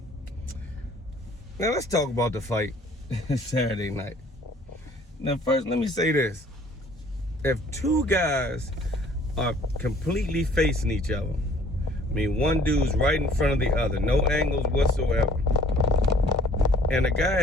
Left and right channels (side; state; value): both; normal; correlation 0.56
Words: Now, let's talk about the fight Saturday night. Now, first, let me say this. If two guys are completely facing each other, I mean, one dude's right in front of the other, no angles whatsoever, and the guy